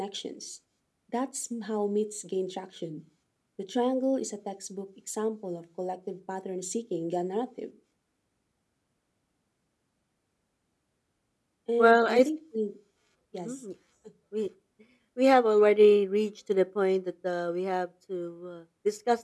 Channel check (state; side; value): identical; both; correlation 1.00